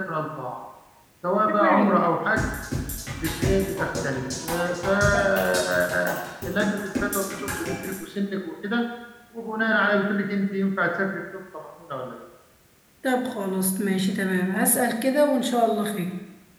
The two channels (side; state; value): both; identical; correlation 1.00